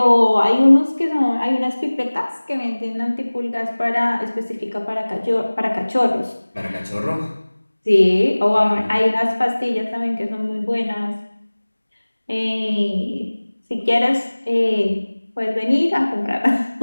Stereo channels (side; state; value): both; inverted; correlation -1.00